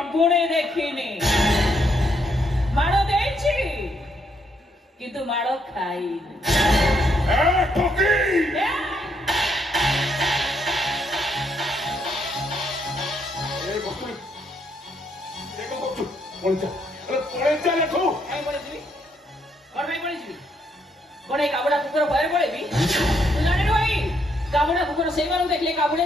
देखिनी माड़ो देछि किंतु माड़ो खाइनी ए ठोकी काबुड़ा कुकुर भय पड़े काबुड़ा कुकुर से देखले काबुड़े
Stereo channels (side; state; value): both; normal; correlation 0.74